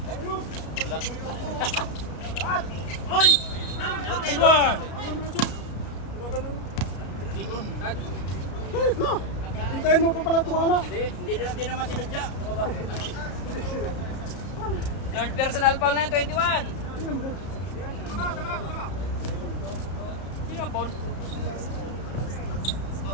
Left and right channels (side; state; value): right; late; 33 ms